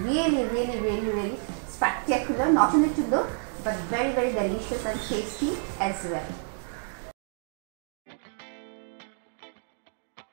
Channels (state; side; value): silent; left; 59 dB below the other